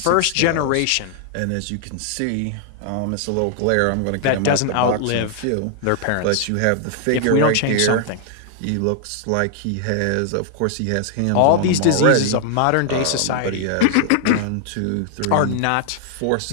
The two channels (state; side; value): different; both; correlation 0.00